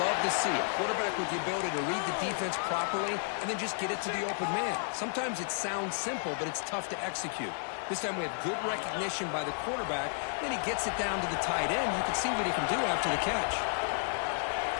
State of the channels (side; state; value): right; silent; digital silence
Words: to see. A quarterback with the ability to read the defense properly and then just get it to the open man. Sometimes it sounds simple, but it's tough to execute. This time we have good recognition by the quarterback. Then he gets it down to the tight end. You can see what he can do after the catch.